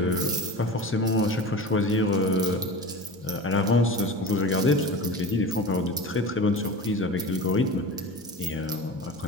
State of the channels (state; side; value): normal; both; correlation 0.32